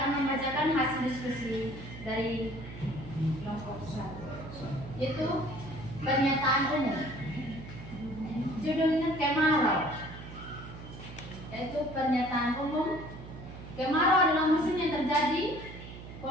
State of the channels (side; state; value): right; noise; hum, 13 dB below the sound